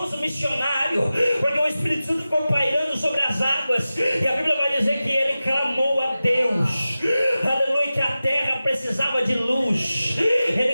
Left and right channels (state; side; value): inverted; both; correlation -0.95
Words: missionário, porque o Espírito Santo ficou pairando sobre as águas, e a Bíblia vai dizer que Ele clamou a Deus, aleluia, que a terra precisava de luz.